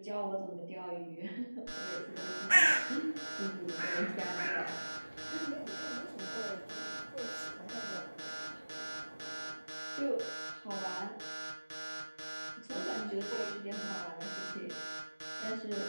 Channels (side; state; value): both; inverted; correlation -1.00